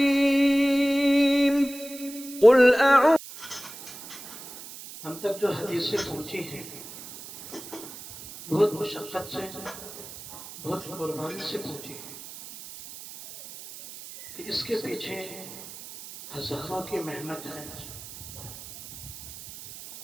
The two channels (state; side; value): noise; right; hiss, 14 dB below the sound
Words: قل اعوذ ہم تک جو حدیثیں پہنچی ہیں بہت مشقت سے بہت قربانی سے پہنچی ہیں کہ اس کے پیچھے ہزاروں کی محنت ہے